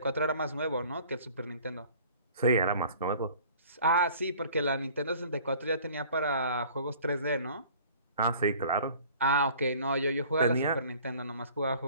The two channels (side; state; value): both; inverted; correlation -0.50